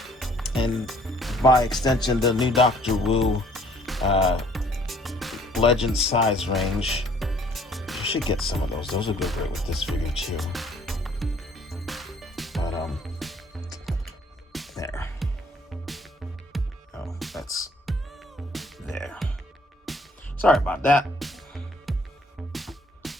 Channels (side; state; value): both; normal; correlation 0.59